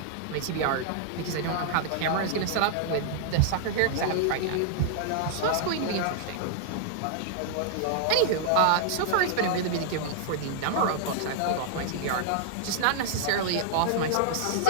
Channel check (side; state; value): both; different; correlation -0.01